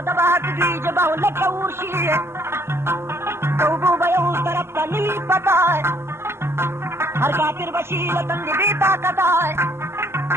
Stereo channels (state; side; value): late; left; 0.12 ms